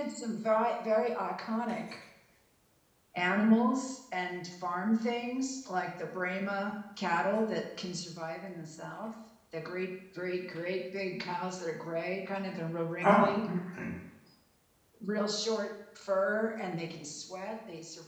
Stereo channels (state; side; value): identical; both; correlation 1.00